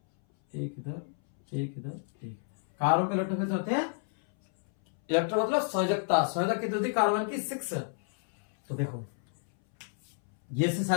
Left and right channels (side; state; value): right; silent; 58 dB below the other